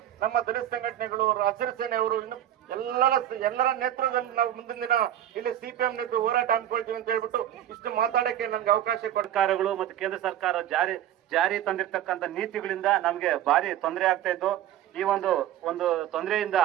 ನಮ್ಮ ದಲಿತ ಸಂಘಟನೆಗಳು, ಹಸಿರು ಸೇನೆಯವರು, ಇನ್ನು ಎಲ್ಲರ ನೇತೃತ್ವದಲ್ಲಿ ನಾವು ಮುಂದಿನ ದಿನ ಇಲ್ಲಿ CPM ನೇತೃತ್ವ ಹೋರಾಟ ಹಮ್ಮಿಕೊಳ್ತೀವಿ ಅಂತ ಹೇಳ್ಬಿಟ್ಟು ಇಷ್ಟು ಮಾತಾಡಕ್ಕೆ ನನ್ಗೆ ಅವಕಾಶ ಸರ್ಕಾರಗಳು ಮತ್ತು ಕೇಂದ್ರ ಸರ್ಕಾರ ಜಾರಿ ತಂದಿರ್ತಕ್ಕಂಥ ನೀತಿಗಳಿಂದ ನಮ್ಗೆ ಭಾರಿ ತೊಂದರೆ ಆಗ್ತಾ ಇದ್ದು. ಈ ಒಂದು ತೊಂದರೆಯಿಂದ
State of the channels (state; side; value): quieter; left; 11.7 dB